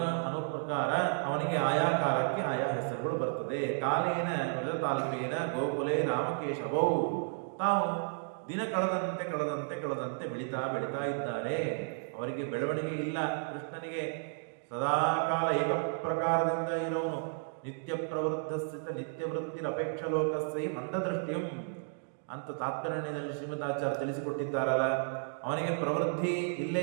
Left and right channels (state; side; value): silent; left; digital silence